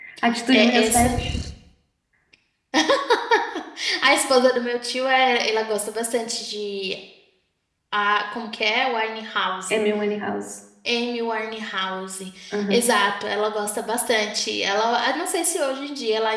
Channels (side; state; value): both; identical; correlation 1.00